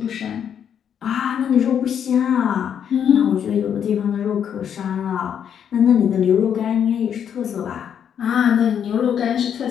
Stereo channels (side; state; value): right; quieter; 8.5 dB